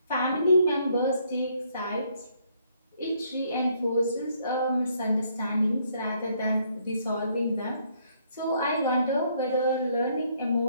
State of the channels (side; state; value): both; inverted; correlation -0.69